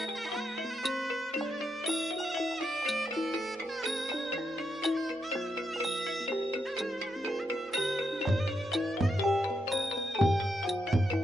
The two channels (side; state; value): both; normal; correlation 0.83